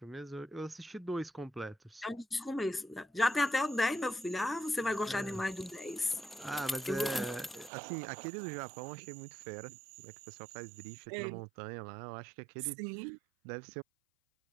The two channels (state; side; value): drops out; left; at 7.7 s